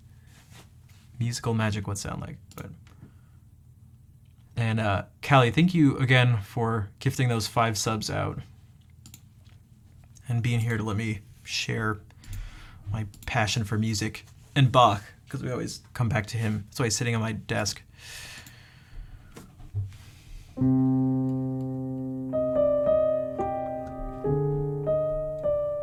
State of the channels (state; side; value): identical; both; correlation 1.00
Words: musical magic would sound like. But and Callie, thank you again for gifting those 5 subs out and being here to let me share my passion for music and Bach, because we always come back to him. That's why he's sitting on my desk.